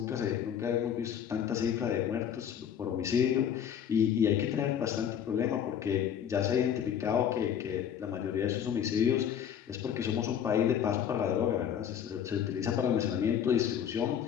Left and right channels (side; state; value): right; quieter; 8.9 dB